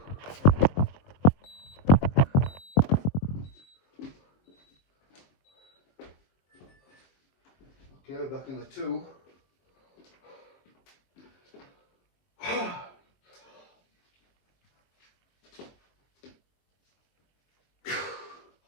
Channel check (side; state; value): right; late; 22 ms